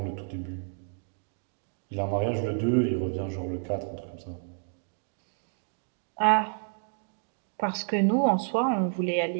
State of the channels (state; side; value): silent; left; 58 dB below the other